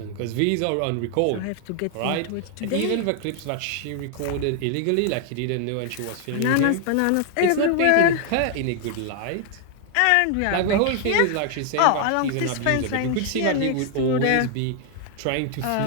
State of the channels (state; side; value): different; both; correlation 0.00